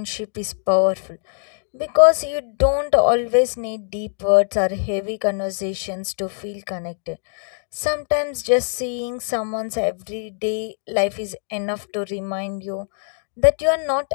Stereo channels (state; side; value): silent; right; digital silence